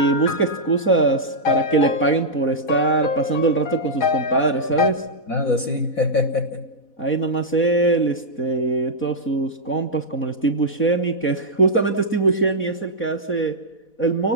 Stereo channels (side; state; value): right; late; 4.1 ms